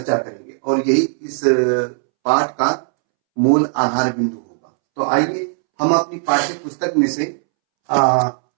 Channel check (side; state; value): left; silent; 67 dB below the other